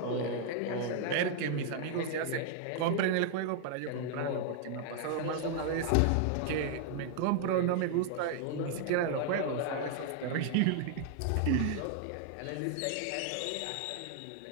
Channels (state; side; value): different; both; correlation 0.00